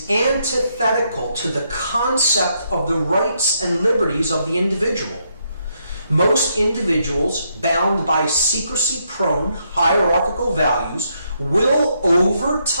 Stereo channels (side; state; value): both; inverted; correlation -0.77